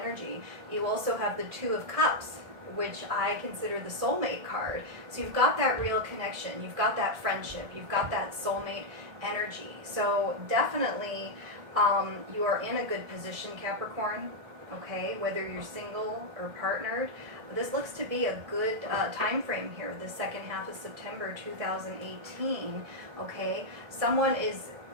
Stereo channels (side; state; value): left; late; 1.7 ms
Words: You also have the Two of Cups, which I consider the soulmate card. So you've got that real connection, you've got that friendship, you've got that soulmate energy. So definitely you are in a good position, Capricorn, okay, whether you're single or partnered. This looks to be a good time frame here, the second half of September 2018, okay? Someone is